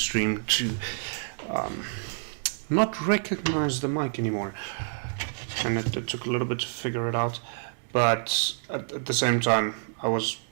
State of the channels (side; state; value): left; silent; 59 dB below the other